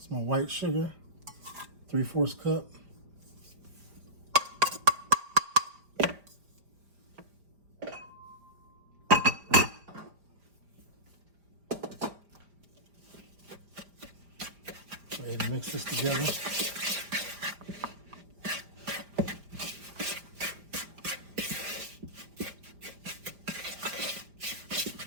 my white sugar, 3/4 cup. Go ahead and mix this together.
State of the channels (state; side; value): late; left; 5.0 ms